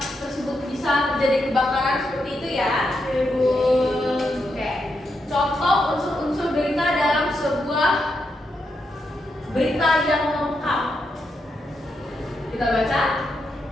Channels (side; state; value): both; normal; correlation 0.83